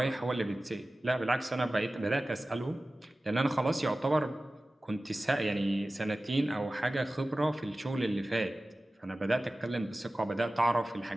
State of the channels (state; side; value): normal; both; correlation 0.96